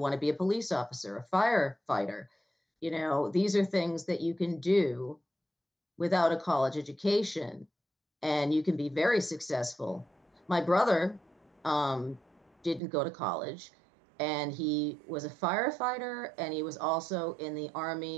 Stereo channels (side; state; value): left; drops out; at 12.8 s